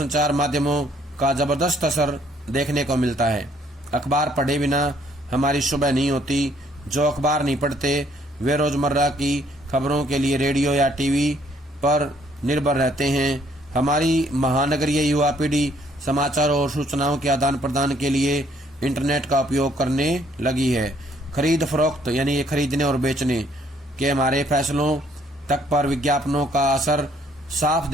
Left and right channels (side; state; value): both; normal; correlation 0.65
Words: माध्यमों का जबरदस्त असर देखने को मिलता है। अखबार पढ़े बिना हमारी सुबह नहीं होती। जो अखबार नहीं पढ़ते वे रोजमर्रा की खबरों के लिए रेडियो या टीवी पर निर्भर रहते हैं। हमारी महानगरीय युवा पीढ़ी समाचार और सूचनाओं के आदान प्रदान के लिए इंटरनेट का उपयोग करने लगी है। खरीद फरोख्त यानी खरीदने और बेचने के हमारे फैसलों तक पर विज्ञापनों का असर साफ